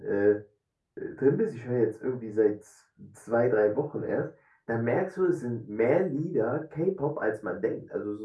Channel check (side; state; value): both; identical; correlation 1.00